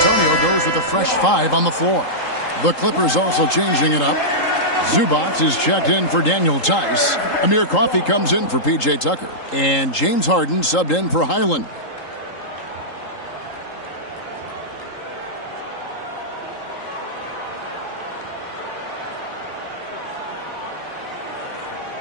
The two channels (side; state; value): right; late; 3.8 ms